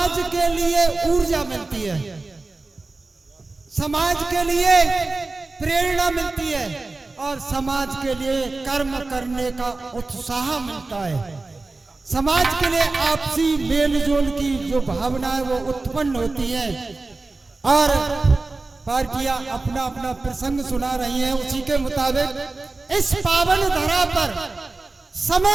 के लिए ऊर्जा मिलती है, समाज के लिए प्रेरणा मिलती है और समाज के लिए कर्म करने का उत्साह मिलता है। समाज के लिए आपसी मेलजोल की जो भावना है वो उत्पन्न होती है। और पार्टियां अपना अपना प्रसंग सुना रही हैं, उसी के मुताबिक इस पावन धरा पर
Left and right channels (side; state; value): left; quieter; 3.4 dB